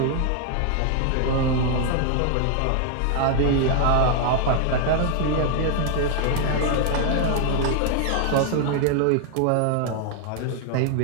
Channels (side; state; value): both; different; correlation 0.00